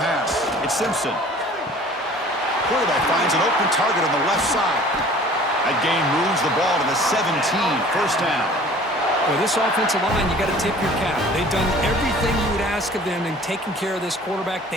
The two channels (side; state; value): both; normal; correlation 0.48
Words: It's Simpson. Quarterback finds an open target on the left side. That gain moves the ball to the 17. First down. Well, this offensive line, you got to tip your cap. They've done everything you would ask of them in taking care of this quarterback.